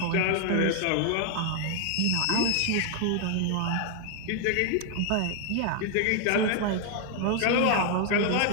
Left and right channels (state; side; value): different; both; correlation 0.00